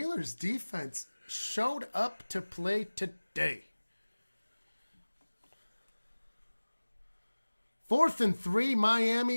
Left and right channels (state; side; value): inverted; both; correlation -1.00